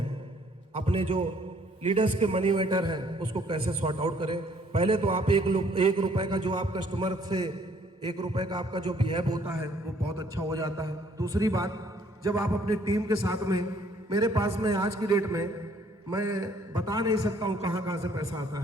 अपने जो लीडर्स के मनी मैटर है उसको कैसे सॉर्ट आउट करें। पहले तो आप 1 रुपए का जो आप कस्टमर से 1 रुपए का आपका जो बिहेव होता है वो बहुत अच्छा हो जाता है। दूसरी बात, जब आप अपनी टीम के साथ में, मेरे पास में आज की डेट में मैं बता नहीं सकता हूं कहां से पैसा आता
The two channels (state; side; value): normal; both; correlation 0.62